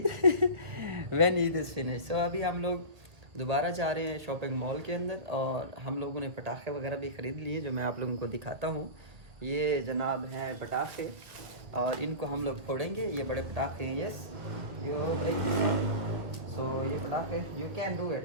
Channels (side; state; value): left; late; 1.8 ms